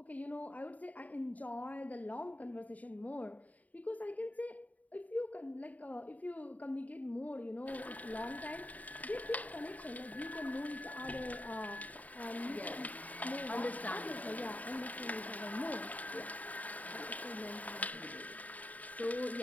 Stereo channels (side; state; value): right; late; 0.073 ms